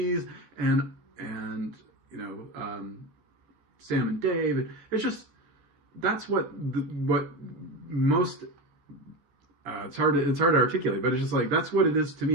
and Sam and Dave. And it's just that's what most. It's hard to articulate, but it's just like that's what it is to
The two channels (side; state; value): left; late; 14 ms